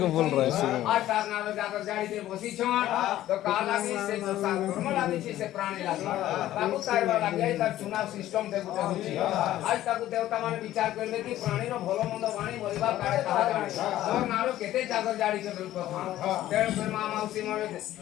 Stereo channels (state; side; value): quieter; right; 13.8 dB